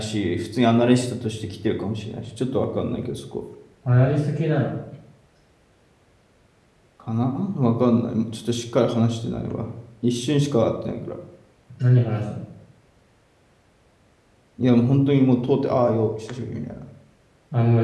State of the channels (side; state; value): both; identical; correlation 1.00